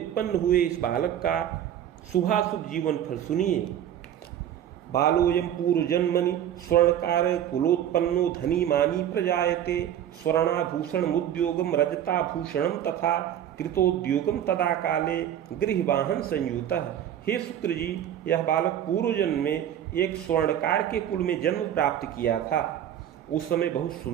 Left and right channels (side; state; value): left; quieter; 10.5 dB